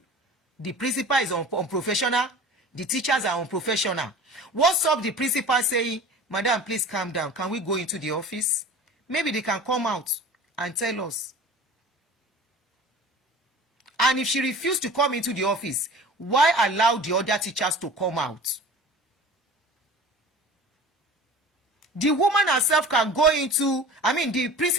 The principal is unprofessional, the teachers are unprofessional. What's up the principal saying, madam, please calm down, can we go into the office? Maybe they can come out and tell us. And if she refused to come into the office, why allow the other teachers to come out? The woman herself can go into, the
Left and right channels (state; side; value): normal; both; correlation 0.40